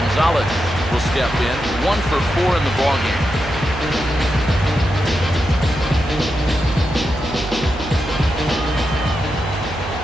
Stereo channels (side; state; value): right; noise; hum, 12 dB below the sound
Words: will step in. 1 for 4 in the ballgame.